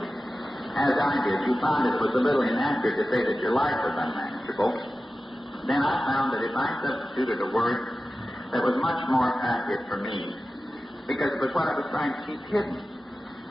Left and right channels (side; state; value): both; normal; correlation 0.94